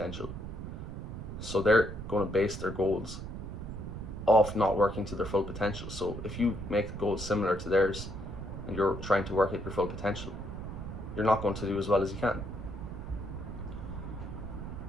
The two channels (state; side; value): noise; right; rumble, 8 dB below the sound